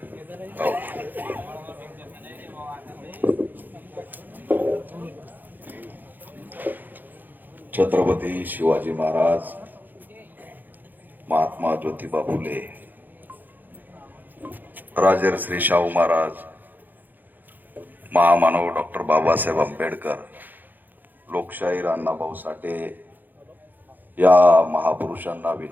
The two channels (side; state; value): left; late; 0.087 ms